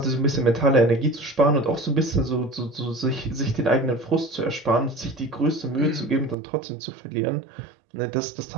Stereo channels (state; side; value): drops out; left; at 6.4 s